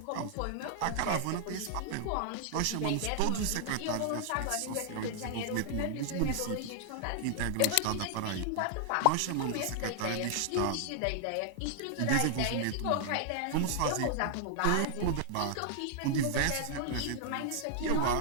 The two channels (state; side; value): different; both; correlation 0.00